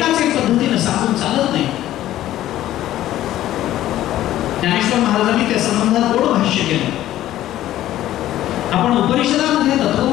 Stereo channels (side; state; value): right; quieter; 13.6 dB